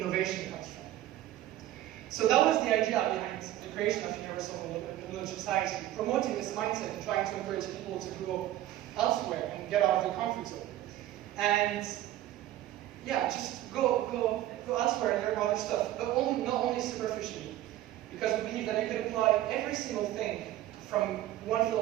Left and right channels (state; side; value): quieter; left; 14.1 dB